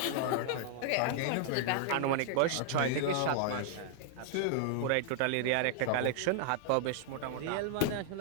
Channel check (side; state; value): both; different; correlation 0.00